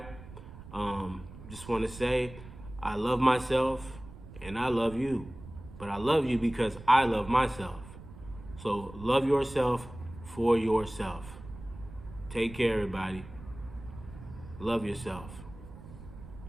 Just want to say, I love myself and I love you. But I love you because I love myself. So love yourself for yourself. Take care, everybody. Love yourself.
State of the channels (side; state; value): right; noise; rumble, 15 dB below the sound